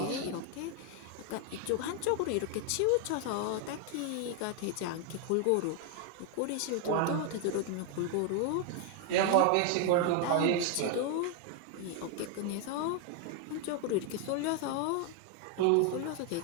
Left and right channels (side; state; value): both; different; correlation 0.01